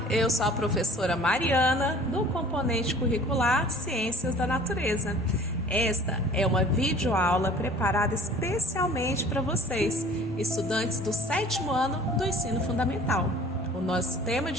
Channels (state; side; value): normal; both; correlation 0.49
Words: eu sou a professora Mariana, do componente curricular Ciências da Natureza. Esta é uma videoaula preparada especialmente para vocês, estudantes do 7º ano do ensino fundamental. O nosso tema